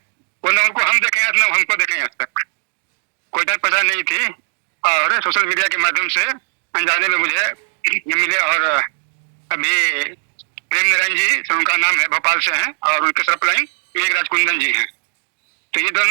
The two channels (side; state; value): left; silent; digital silence